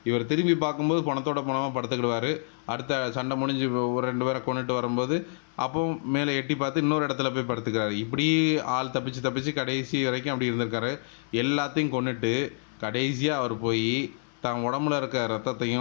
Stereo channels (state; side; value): silent; right; 60 dB below the other